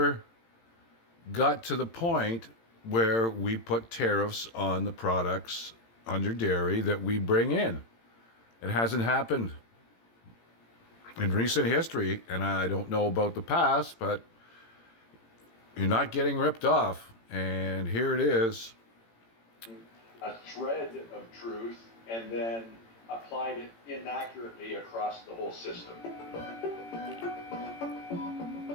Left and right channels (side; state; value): right; late; 18 ms